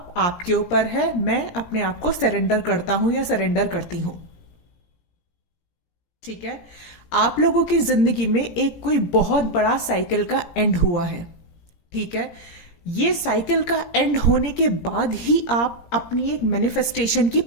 आपके ऊपर है, मैं अपने आप को सरेंडर करता हूं या सरेंडर करती हूं। ठीक है, आप लोगों की जिंदगी में एक कोई बहुत बड़ा साइकिल का एंड हुआ है। ठीक है, ये साइकिल का एंड होने के बाद ही आप अपनी एक मैनिफेस्टेशन की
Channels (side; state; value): right; late; 18 ms